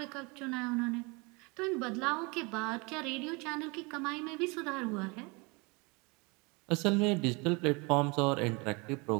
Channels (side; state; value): left; quieter; 28.4 dB